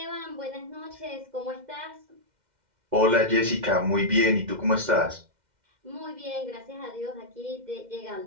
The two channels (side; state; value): left; late; 2.1 ms